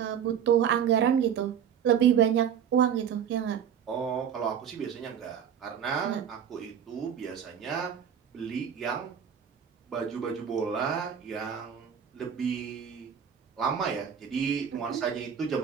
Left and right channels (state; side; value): quieter; left; 8.3 dB